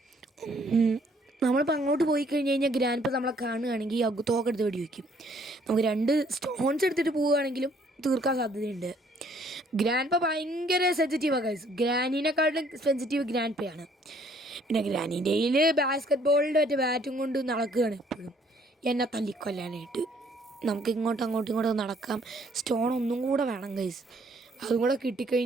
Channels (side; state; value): both; normal; correlation 0.63